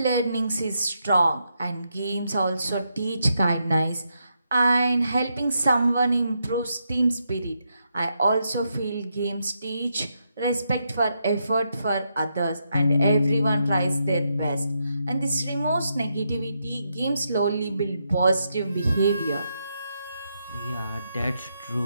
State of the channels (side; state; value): both; inverted; correlation -0.82